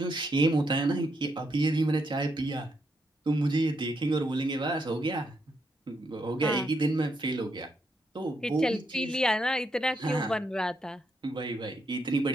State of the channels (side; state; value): both; normal; correlation 0.79